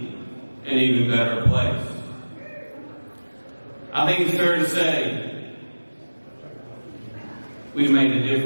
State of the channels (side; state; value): both; inverted; correlation -1.00